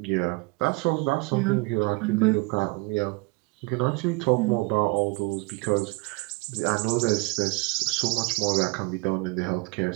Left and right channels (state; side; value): quieter; left; 27.1 dB